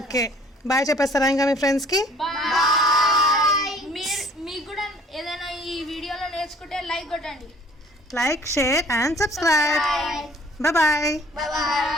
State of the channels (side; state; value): both; normal; correlation 0.54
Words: బాయ్ చెప్పేస్తారా ఇంకా మీ ఫ్రెండ్స్కి? బాయ్. మీకు కూడా ఏదైనా ఈ వీడియోలో నేర్చుకుంటే లైక్ కొట్టండి. Like, share and subscribe. Bye.